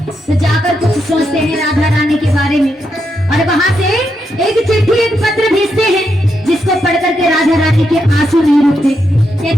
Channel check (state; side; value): normal; both; correlation 0.82